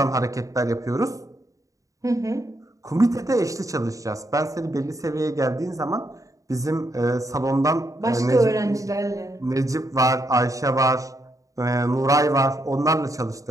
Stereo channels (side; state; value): left; late; 0.16 ms